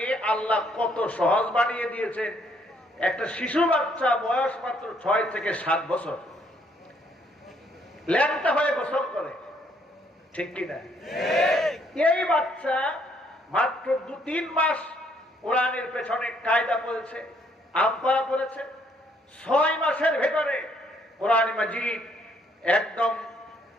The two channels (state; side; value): normal; both; correlation 0.68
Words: আল্লাহ কত সহজ বানিয়ে দিয়েছেন। একটা শিশু বাচ্চা বয়স মাত্র 6 থেকে 7 বছর ল্যাংটা হয়ে গোসল করে, ঠিক কিনা? এই বাচ্চা মাত্র 2-3 মাস কোরআনের পেছনে কায়দা পড়েছে, আব্বা পড়েছে, 6 মাসের ভেতরে কোরআন মাজিদ একদম